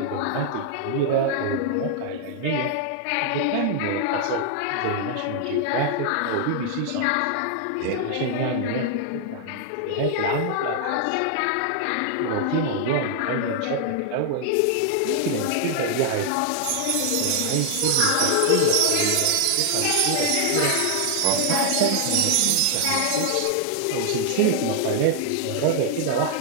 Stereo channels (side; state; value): both; different; correlation 0.00